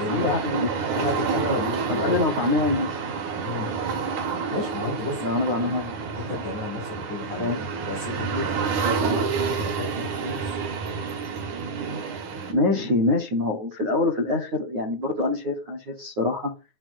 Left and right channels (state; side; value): late; left; 9.6 ms